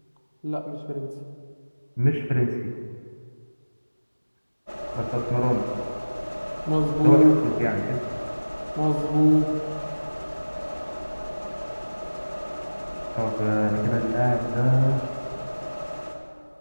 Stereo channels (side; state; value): both; inverted; correlation -1.00